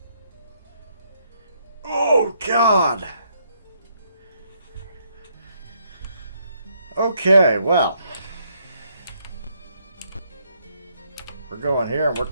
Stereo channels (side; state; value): both; inverted; correlation -0.72